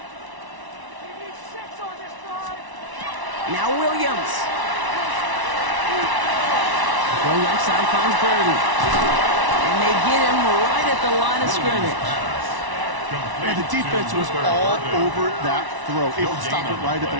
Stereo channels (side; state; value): left; late; 1.0 ms